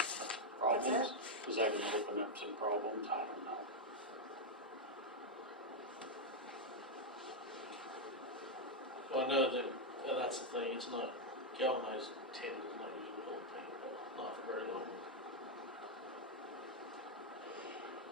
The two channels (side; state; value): both; normal; correlation 0.00